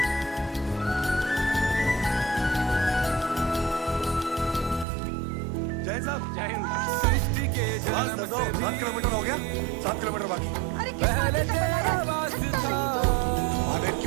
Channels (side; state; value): left; drops out; at 4.9 s